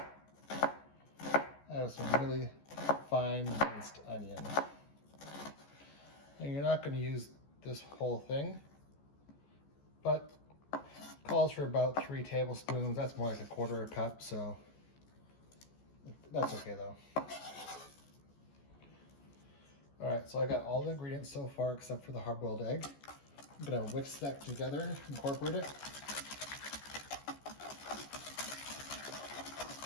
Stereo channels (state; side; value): late; right; 14 ms